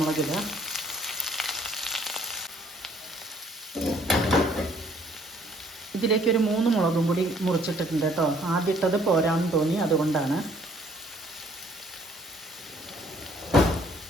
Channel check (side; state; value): both; normal; correlation 0.61